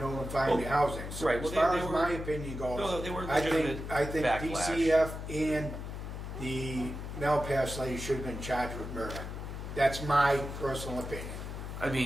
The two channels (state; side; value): noise; left; hum, 7 dB below the sound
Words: the housing. So right, as well, far they as were- my opinion goes, No, they were I legitimate think backlash. DCF and the Melpass lady should have been charged with murder. That's my personal opinion. I